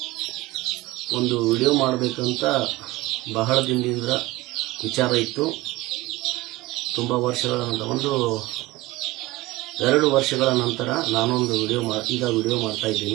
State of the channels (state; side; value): quieter; left; 19.3 dB